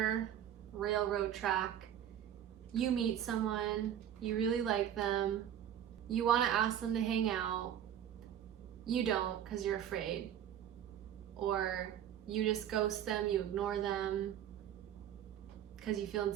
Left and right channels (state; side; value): quieter; left; 10.2 dB